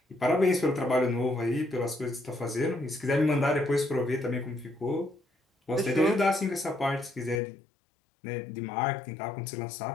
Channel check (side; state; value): right; drops out; at 7.4 s